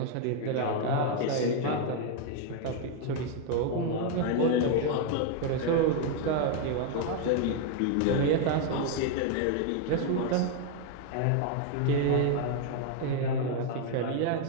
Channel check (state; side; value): different; both; correlation 0.01